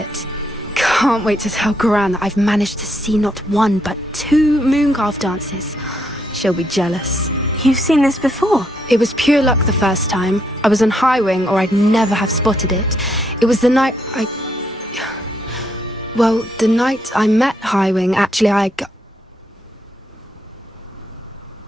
Can't wait to tell Gran that I've managed to see not one but 2 mooncalf dances. She'll be jealous. You've seen this before? It was pure luck the first time. I was on Highwing or I'd never have spotted it. It was the night the night I met Highwing, actually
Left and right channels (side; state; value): both; normal; correlation 0.75